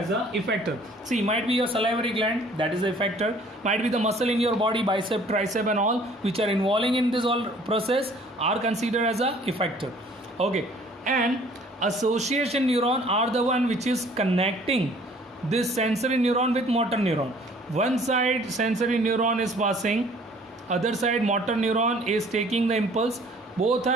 a effector. See, might be your salivary gland, that is the effector. Might be the muscle in your body, bicep, tricep and all, which are involving in this all process, are considered as a effector. Okay, and association neuron are the one which is connecting this sensory neuron with motor neuron. One side sensory neuron is passing, other side motor neuron is taking the impulse. Both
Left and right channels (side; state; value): both; normal; correlation 0.55